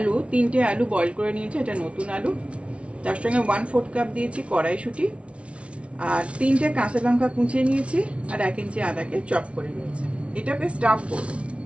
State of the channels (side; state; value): left; late; 0.061 ms